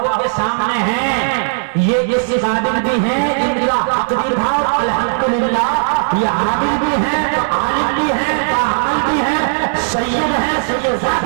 के सामने हैं, ये इस काबिल भी हैं, इनका तकदीर था अल्हम्दुलिल्लाह। ये आमिल भी हैं, तो आलिम भी हैं, कामिल भी हैं, सैयद है,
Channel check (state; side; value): silent; left; 69 dB below the other